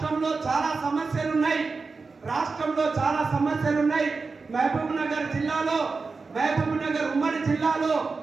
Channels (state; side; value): quieter; left; 4.3 dB